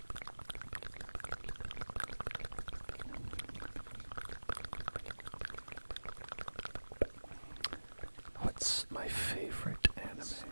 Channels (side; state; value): both; inverted; correlation -1.00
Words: What's my favorite anime?